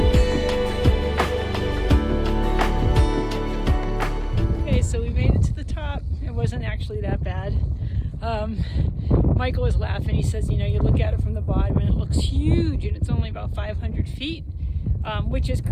Actually that bad. Michael was laughing. He says, you look at it from the bottom and it looks huge and it's only about 500 feet, which is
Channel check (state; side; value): identical; both; correlation 1.00